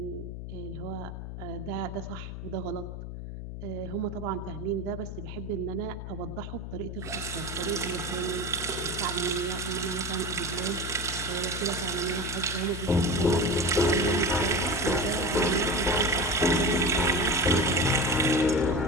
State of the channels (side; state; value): left; noise; hum, 8 dB below the sound